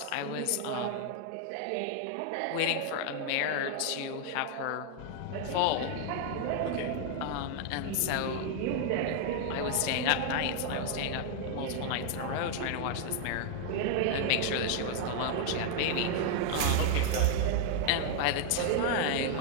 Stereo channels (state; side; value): different; both; correlation 0.00